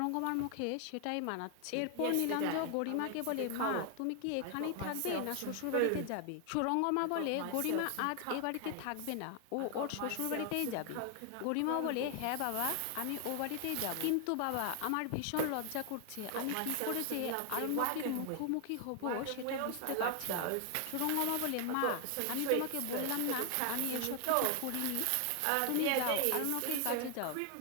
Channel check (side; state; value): both; different; correlation 0.00